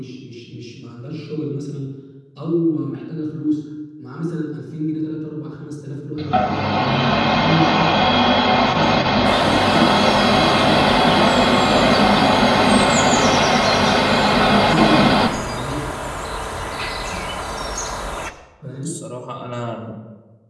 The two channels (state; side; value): identical; both; correlation 1.00